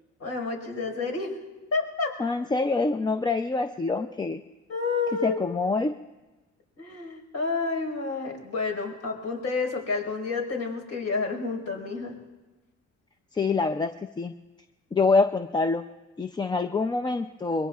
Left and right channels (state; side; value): quieter; right; 3.5 dB